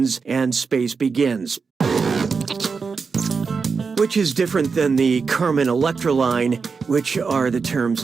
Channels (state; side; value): quieter; left; 5.1 dB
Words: and space begins. Which is different than the Carmen Electra line, which are the terms